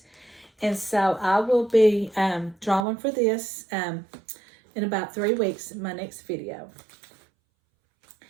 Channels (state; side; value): drops out; left; at 2.9 s